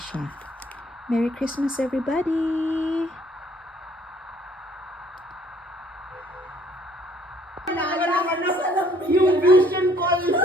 Merry Christmas, everybody! Yung vision call.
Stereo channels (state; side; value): normal; both; correlation 0.59